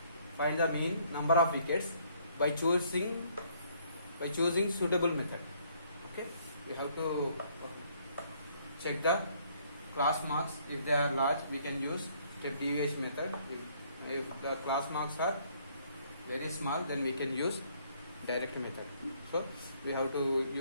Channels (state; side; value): inverted; both; correlation -0.65